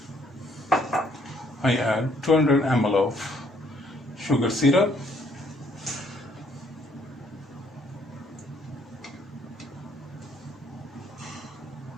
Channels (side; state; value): both; normal; correlation 0.66